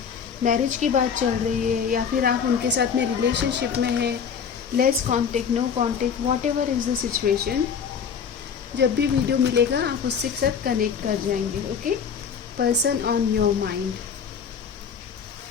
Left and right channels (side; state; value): right; quieter; 6.9 dB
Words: मैरिज की बात चल रही है, या फिर आप उनके साथ में रिलेशनशिप में हैं, less contact, no contact, whatever is the situation, जब भी वीडियो मिलेगा आप उससे साथ कनेक्ट कर जाएंगे। Okay, person on your mind,